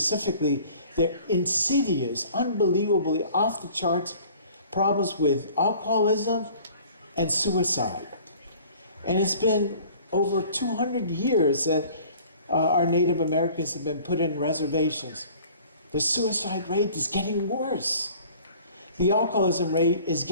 their insidious, unbelievably off the charts problems with alcoholism and suicide. And it's been over 200 years that our Native Americans have been put in reservations. The suicide rate is getting worse. The alcoholism rate is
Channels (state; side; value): inverted; both; correlation -0.49